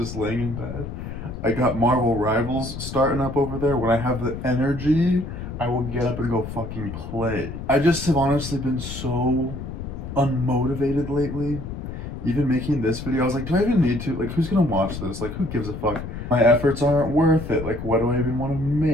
laying in bed. I got Marvel Rivals starting up over there. When I have the energy, I will get up and go fucking play. I just have honestly been so unmotivated lately. Even making this video, I was like, do I even need to? Like, who's gonna watch this? Like, who gives a fuck? My efforts aren't worth it. Like, what do I even want to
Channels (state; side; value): noise; left; rumble, 8 dB below the sound